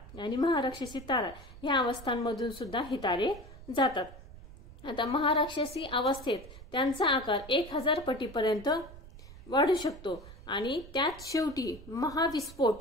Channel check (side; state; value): right; noise; rumble, 17 dB below the sound